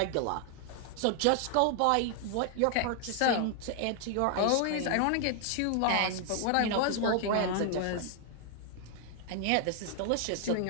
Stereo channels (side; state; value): both; different; correlation 0.00